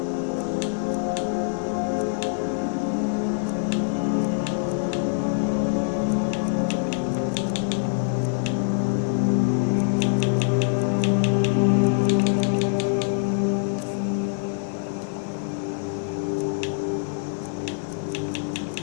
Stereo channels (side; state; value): right; silent; digital silence